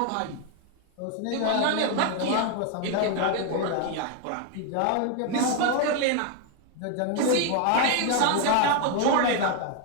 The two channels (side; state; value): both; different; correlation 0.01